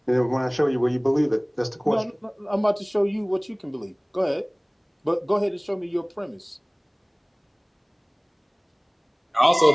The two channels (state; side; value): identical; both; correlation 1.00